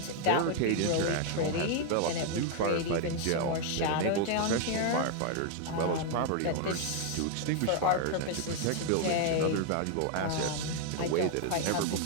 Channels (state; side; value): different; both; correlation 0.00